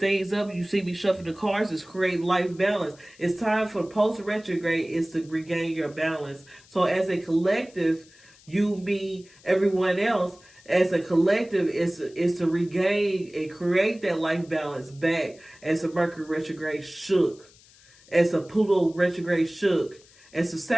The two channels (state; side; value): noise; left; hiss, 26 dB below the sound